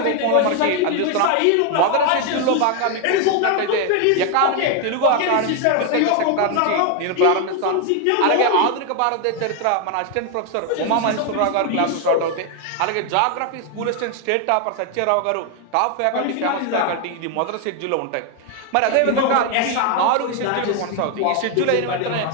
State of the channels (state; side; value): different; both; correlation 0.01